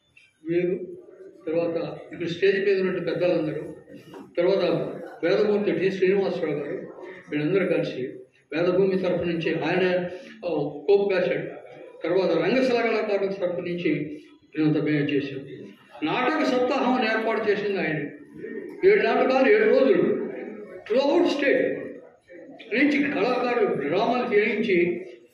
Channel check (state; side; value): identical; both; correlation 1.00